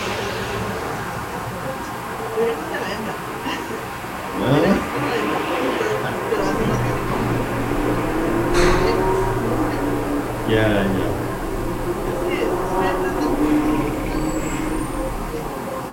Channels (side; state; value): both; identical; correlation 1.00